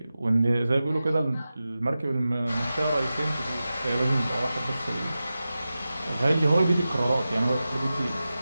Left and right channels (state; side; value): inverted; both; correlation -0.94